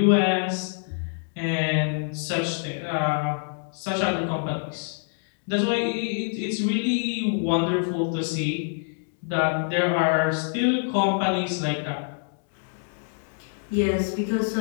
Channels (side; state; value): right; silent; 61 dB below the other